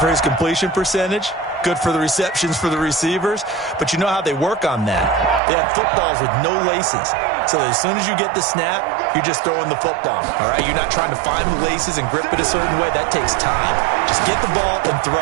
his completion percentage. Good for the receptions for the receivers. But you know how they work on that. They have footballs with no laces. So as soon as you get the snap, you're just throwing the football. All right, you're not trying to find the laces and grip it a certain way. That takes time. Just get the ball and throw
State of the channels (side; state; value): left; drops out; at 5.4 s